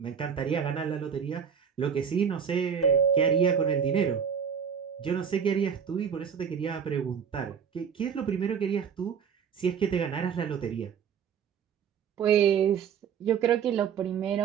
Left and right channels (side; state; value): left; quieter; 7.3 dB